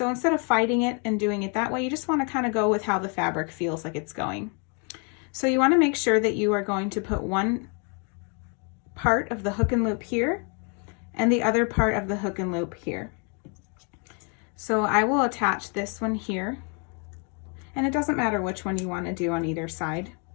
instead of fighting it and doing it that way, you just want to kind of go with how the fabric feels like it's going. So you want to make sure that you are going to put one part of the hook and loop here and the other part of the hook and loop here. So I will attach this one here, and it doesn't matter which one you want to do on either side.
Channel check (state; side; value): quieter; right; 37.4 dB